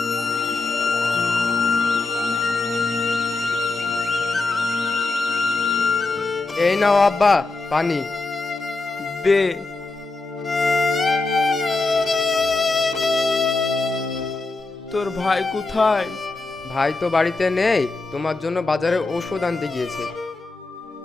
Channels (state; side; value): quieter; right; 3.5 dB